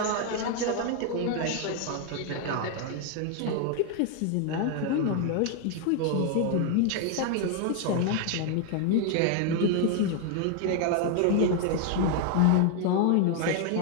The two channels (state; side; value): different; both; correlation 0.00